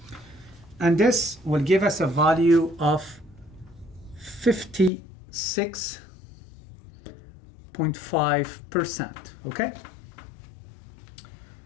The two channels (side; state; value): right; drops out; at 4.9 s